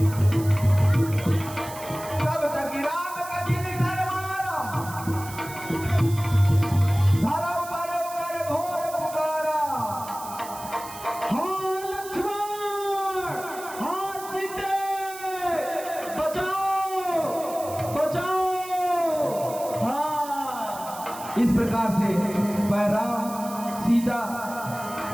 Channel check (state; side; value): noise; right; hiss, 14 dB below the sound